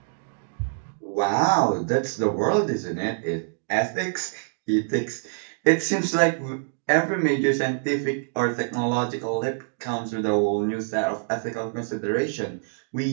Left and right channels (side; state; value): left; silent; digital silence